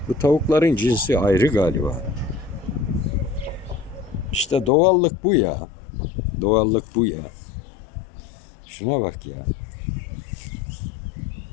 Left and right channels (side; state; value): right; drops out; at 4.7 s